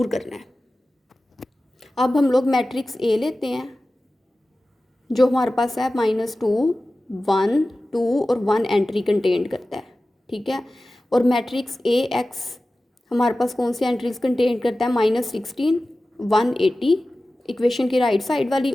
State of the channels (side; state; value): both; normal; correlation 0.96